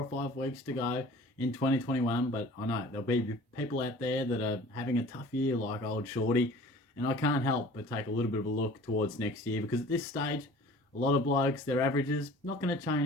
or 5 weeks to go in 2021, but I know there'll be people out there that are having a tough year like old Shorty, and I can't help but take a little bit of a look towards next year because at this stage, a lot of blokes, their averages, not going to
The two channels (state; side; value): normal; both; correlation 0.45